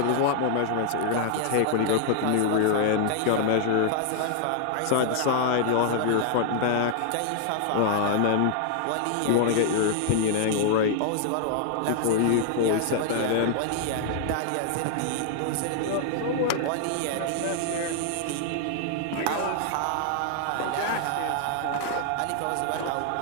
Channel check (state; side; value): different; both; correlation 0.00